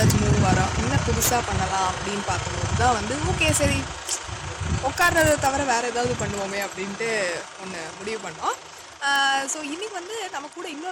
3 வாரம், என்ன புதுசாக பண்ணலாம் அப்படின்னு பார்க்கும்போது தான் வந்து ஓகே சரி உட்கார்றதை தவிர வேறு ஏதாவது பண்ணுவோமே அப்படின்ட்டு ஒன்று முடிவு பண்ணோம். ஸோ இன்னைக்கு வந்து நம்ம கூட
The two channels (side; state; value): both; identical; correlation 1.00